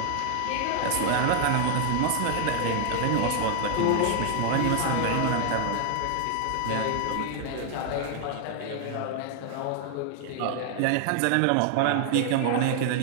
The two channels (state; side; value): different; both; correlation 0.00